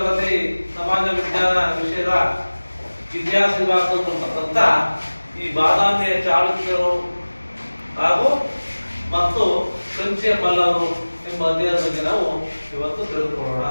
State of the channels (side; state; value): both; inverted; correlation -1.00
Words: ಸಮಾಜ ವಿಜ್ಞಾನ ವಿಷಯದ ಇತಿಹಾಸ ವಿಭಾಗದಲ್ಲಿರತಕ್ಕಂಥ ಈ ಬಾದಾಮಿಯ ಚಾಲುಕ್ಯರು ಹಾಗೂ ಮತ್ತು ಕಂಚಿಯ ಪಲ್ಲವರು ಎಂಬ ಅಧ್ಯಯನದ ಬಗ್ಗೆ ನಾವು ಇವತ್ತು ತಿಳಿದುಕೊಳ್ಳೋಣ.